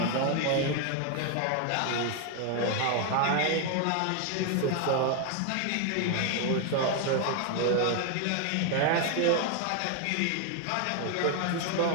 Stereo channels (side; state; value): both; different; correlation 0.01